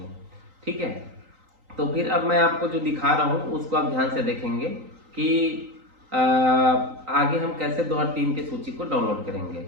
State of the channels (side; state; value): left; late; 3.9 ms